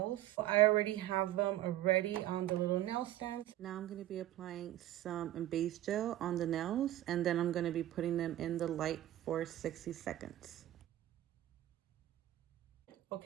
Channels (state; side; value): quieter; left; 13.9 dB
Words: I already have them ready on the little nail stand. Now I'm going to be applying some base gel on the nails, and then I'm going to be putting them in the light for 60 seconds.